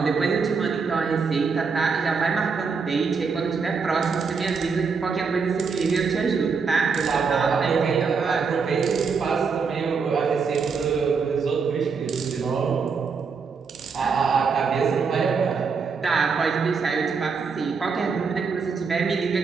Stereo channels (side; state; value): left; quieter; 5.3 dB